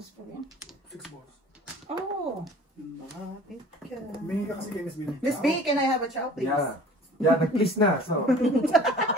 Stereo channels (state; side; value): normal; both; correlation 0.46